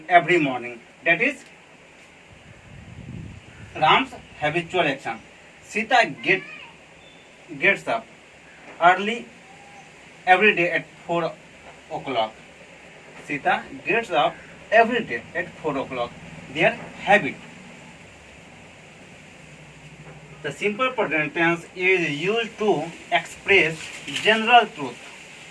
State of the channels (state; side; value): identical; both; correlation 1.00